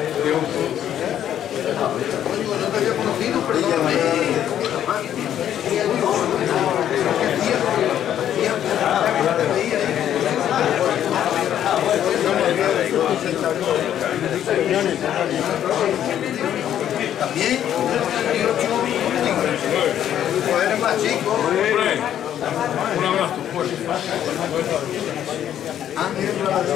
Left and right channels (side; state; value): right; quieter; 10.5 dB